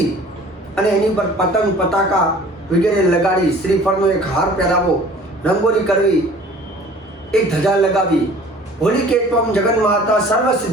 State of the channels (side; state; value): both; normal; correlation 0.48